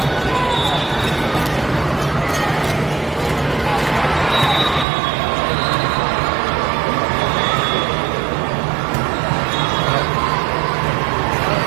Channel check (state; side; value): drops out; left; at 4.9 s